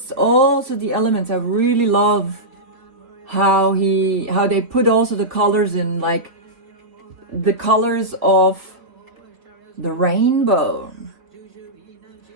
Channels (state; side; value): late; left; 3.7 ms